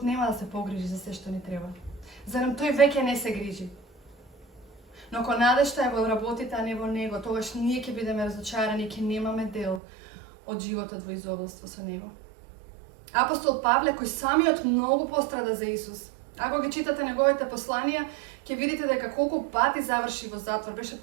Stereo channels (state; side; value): drops out; left; at 9.8 s